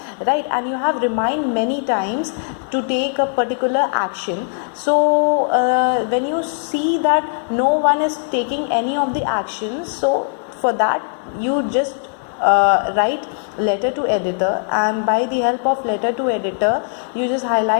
right? And you have remind many times to take a particular action. So when you see that no one is taking any of the actions, so for that you just write letter to editor, and by the help of letter to editor you just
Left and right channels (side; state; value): right; silent; digital silence